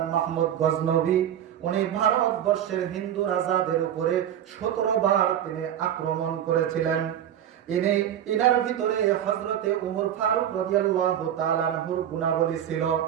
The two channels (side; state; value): left; quieter; 10.4 dB